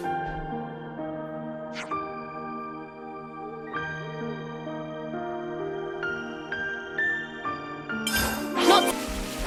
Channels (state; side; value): identical; both; correlation 1.00